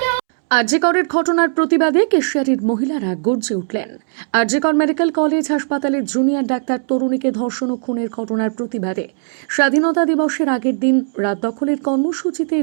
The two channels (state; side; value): silent; left; 68 dB below the other